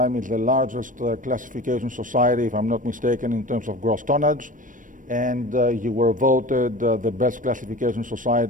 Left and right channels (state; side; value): late; left; 0.38 ms